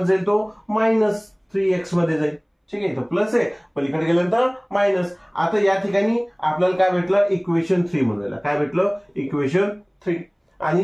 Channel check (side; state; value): both; identical; correlation 1.00